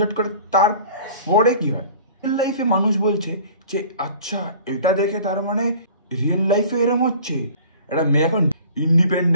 করে, তারপরে কি হয় রিয়েল লাইফে মানুষ বলছে যে আচ্ছা এটা দেখে তার মানে রিয়েল লাইফে এরম হচ্ছে। একটা মেয়ে এখন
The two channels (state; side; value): inverted; both; correlation -0.46